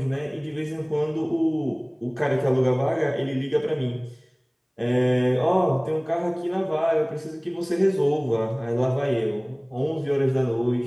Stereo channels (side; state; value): both; identical; correlation 1.00